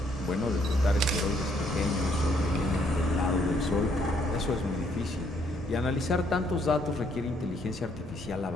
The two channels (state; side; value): normal; both; correlation 0.69